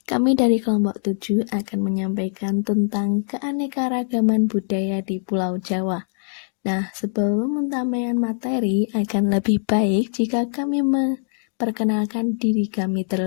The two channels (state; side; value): silent; right; digital silence